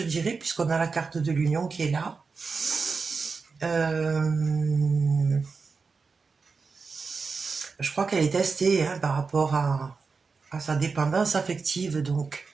puisqu'on a la carte de l'union qui est là. Je crois qu'elle est testée hein, par rapport à sa dépendance affective, donc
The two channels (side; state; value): left; quieter; 4.8 dB